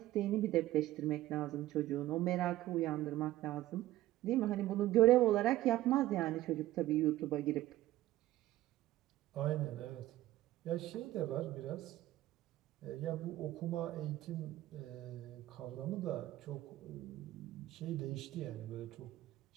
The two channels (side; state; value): left; quieter; 15.3 dB